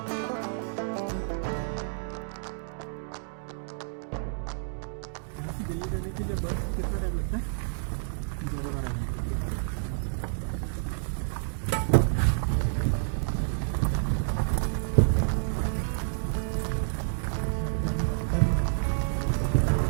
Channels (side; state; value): left; silent; digital silence